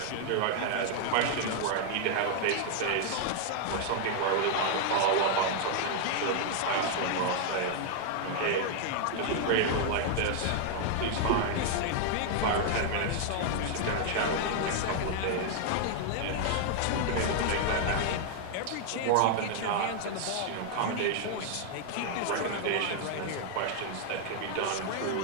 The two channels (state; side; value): different; both; correlation 0.00